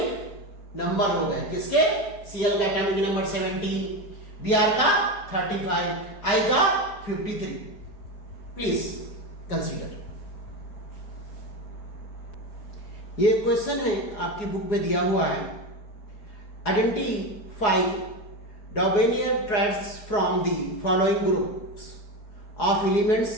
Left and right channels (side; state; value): right; late; 4.8 ms